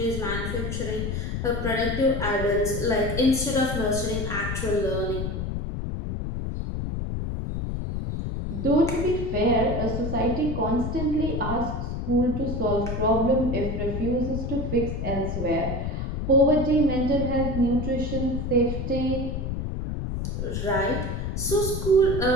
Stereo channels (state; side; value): noise; left; rumble, 3 dB below the sound